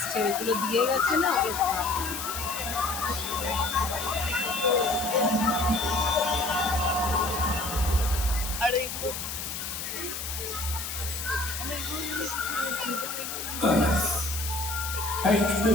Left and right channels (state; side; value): noise; left; hiss, 6 dB below the sound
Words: ওইগুলো দিয়ে গেছে না ওগুলো আর এগুলো Earth. 8